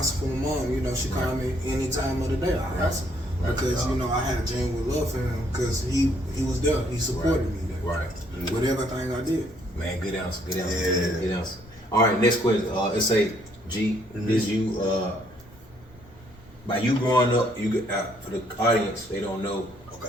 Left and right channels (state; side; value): normal; both; correlation 0.67